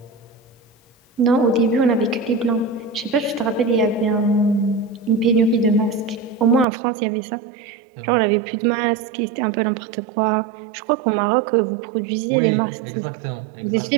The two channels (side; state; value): left; drops out; at 6.7 s